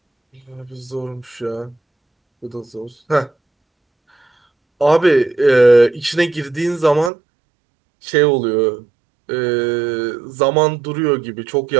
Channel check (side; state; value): left; drops out; at 7.1 s